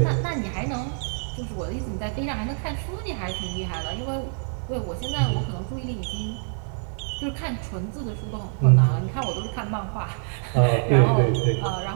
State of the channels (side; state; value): left; silent; 58 dB below the other